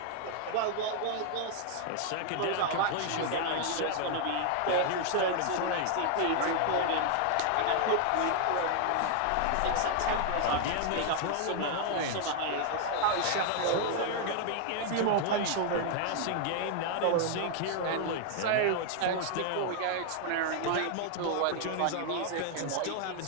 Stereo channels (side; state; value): both; different; correlation 0.00